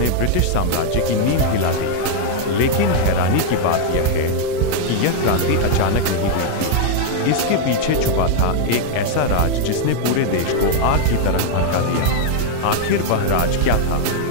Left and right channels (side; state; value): both; different; correlation 0.00